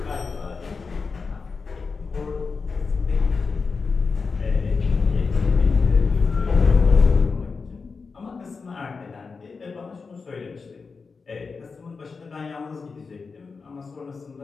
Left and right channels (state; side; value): quieter; right; 4.8 dB